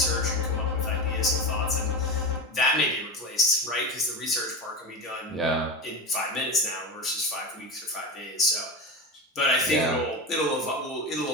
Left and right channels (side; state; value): both; normal; correlation 0.22